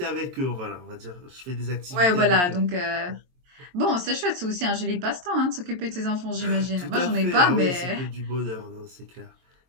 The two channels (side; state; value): left; late; 22 ms